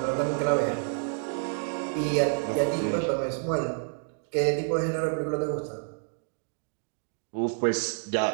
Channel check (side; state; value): left; silent; digital silence